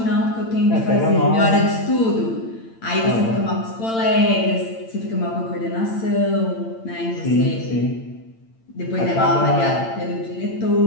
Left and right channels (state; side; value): late; right; 8.9 ms